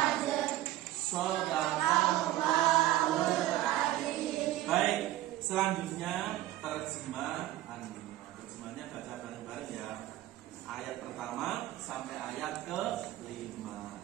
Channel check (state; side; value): quieter; left; 14.9 dB